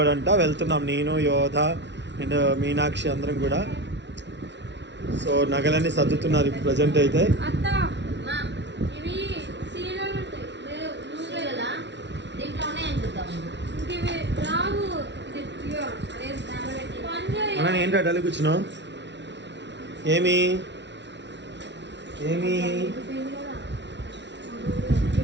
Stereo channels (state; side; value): late; left; 0.51 ms